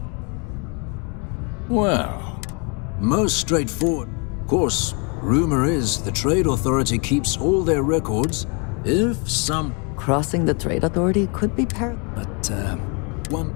Well, most straightforward. Of course, rumor is the Trade Authority keeps all their records. If some... Crossing the Trade Authority could be But, one,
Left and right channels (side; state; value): right; quieter; 33.9 dB